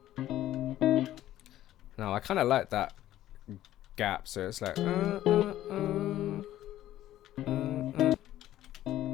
No, I kind of like that gap, so it's like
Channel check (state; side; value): quieter; right; 13.4 dB